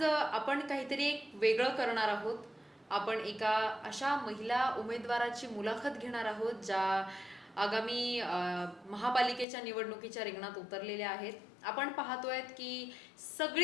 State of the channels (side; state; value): right; drops out; at 9.5 s